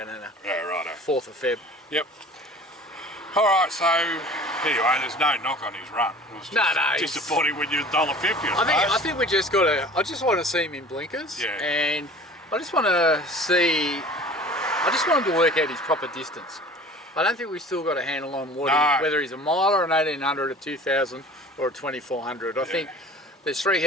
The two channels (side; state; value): both; normal; correlation 0.44